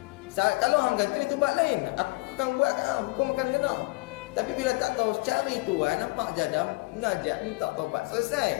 Kalau hang kantoi tu buat lain. Aku akan buat kat hang, hukum akan kena. Tapi bila tak tahu, cari tuan, nampak jadam, najak, minta taubat,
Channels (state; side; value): quieter; right; 25.1 dB